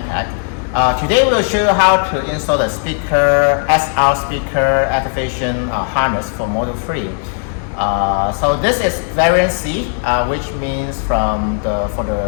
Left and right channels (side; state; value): right; silent; 62 dB below the other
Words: MPAC. Today we'll show you how to install the SR speaker activation harness for Model 3. So this is variant C, which means for